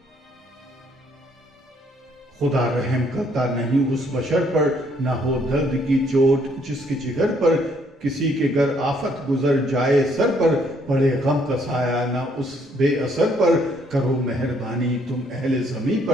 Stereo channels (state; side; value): normal; both; correlation 0.67